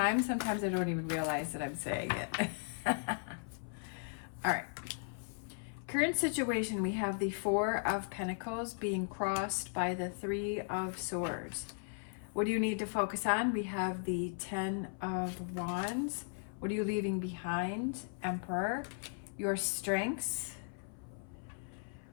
sometimes I don't even realize that I'm saying it. All right. Current situation, we have the Four of Pentacles being crossed by the Three of Swords. What do you need to focus on? We have the Ten of Wands. What are you leaving behind? Emperor. Your strengths.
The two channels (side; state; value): right; silent; 53 dB below the other